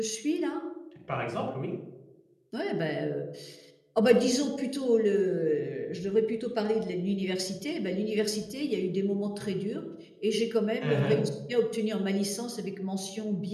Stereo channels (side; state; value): both; identical; correlation 1.00